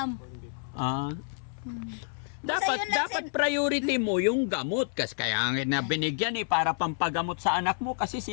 Dapat priority mo yung gamot kasi kaya na binigyan para pampagamot sa anak mo kasi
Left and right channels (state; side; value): silent; right; 59 dB below the other